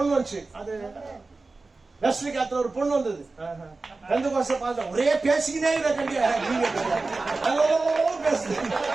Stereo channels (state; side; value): quieter; left; 3.6 dB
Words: வந்துச்சு, அது வெஸ்லி காலத்துல ஒரு பொண்ணு வந்தது. ரெண்டு வருஷம் பார்த்த ஒரே பேசிக்கினே